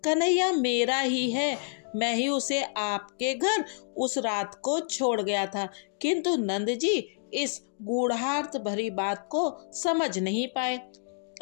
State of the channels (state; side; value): silent; right; digital silence